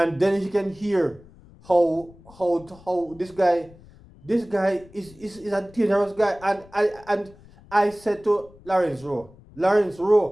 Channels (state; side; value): noise; left; rumble, 24 dB below the sound